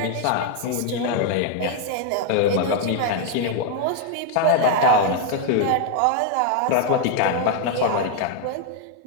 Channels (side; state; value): both; different; correlation 0.01